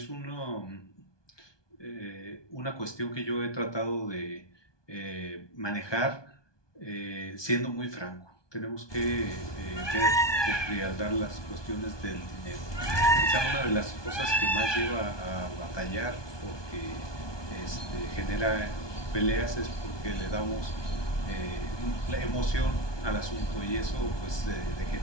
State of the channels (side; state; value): right; late; 1.2 ms